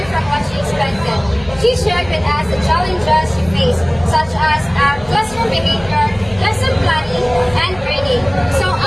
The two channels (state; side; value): noise; left; hum, 19 dB below the sound